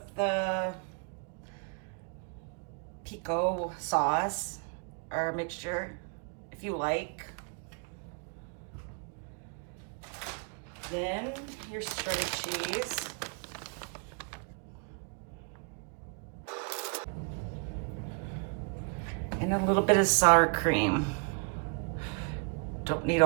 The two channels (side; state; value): left; quieter; 36.0 dB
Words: the pico sauce or mixture if you like. Then your shredded cheese. And a little bit of sour cream. Don't need